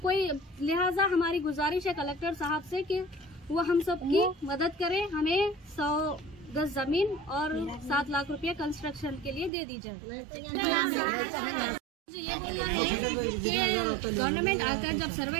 कोई लिहाजा हमारी गुजारिश है कलेक्टर साहब से कि वो हम सबकी मदद करें, हमें 100 गज जमीन और 7 लाख रुपये कंस्ट्रक्शन के लिए दे दी जाए। मुझे ये बोलना है कि गवर्नमेंट आकर जब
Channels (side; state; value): left; drops out; at 9.5 s